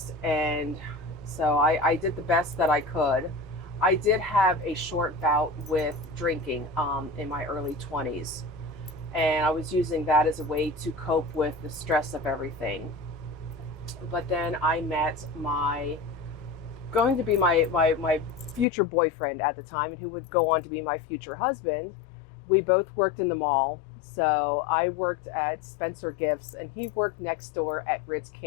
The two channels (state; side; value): drops out; right; at 18.7 s